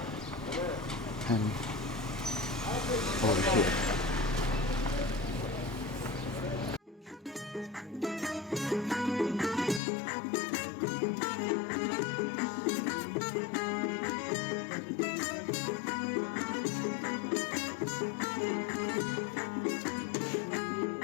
And over here.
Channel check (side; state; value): right; drops out; at 9.8 s